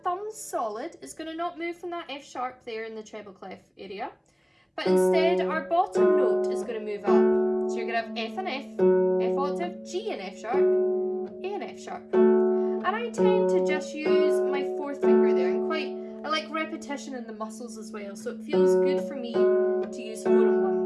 solid. It's gonna not move from that F sharp there in the treble clef area. But instead, our bottom note is gonna move up. So you're gonna have F and F octave, G and F sharp, A and F sharp. And I tend to just use my fourth finger there, and I like repetition in the muscles as well, so it feels good for me to use 4 and 1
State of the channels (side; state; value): both; identical; correlation 1.00